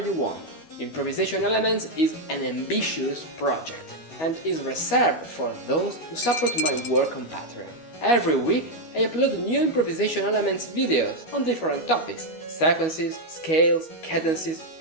want. Improvisation Elements is an ambitious project and is reserved for those who support my work on Patreon. Every week I upload new Improvisation Elements videos on different topics, sequences, scales, cadences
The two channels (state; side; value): late; right; 12 ms